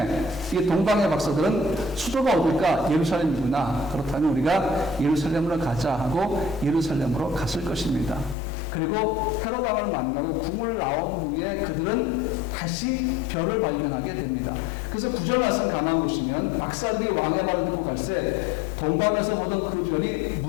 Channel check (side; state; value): right; drops out; at 8.3 s